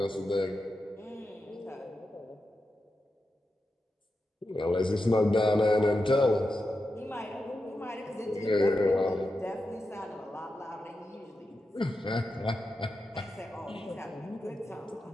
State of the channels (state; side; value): normal; both; correlation 0.89